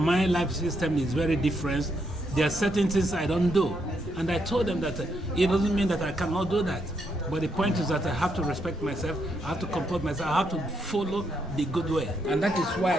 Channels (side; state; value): both; normal; correlation 0.77